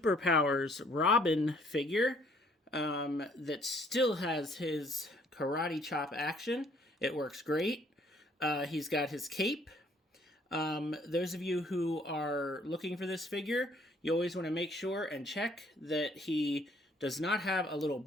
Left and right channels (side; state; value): both; normal; correlation 0.62